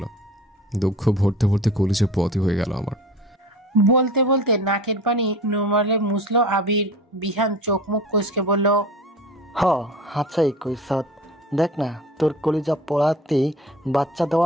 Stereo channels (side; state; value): both; normal; correlation 0.39